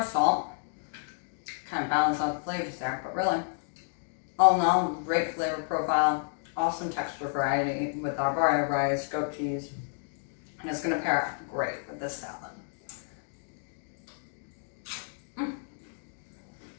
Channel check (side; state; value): right; silent; digital silence